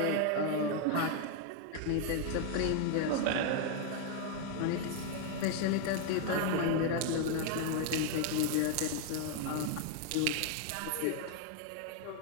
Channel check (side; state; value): both; different; correlation 0.01